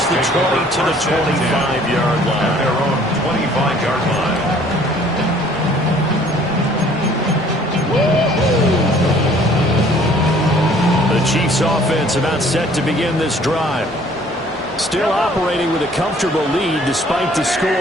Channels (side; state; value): both; normal; correlation 0.56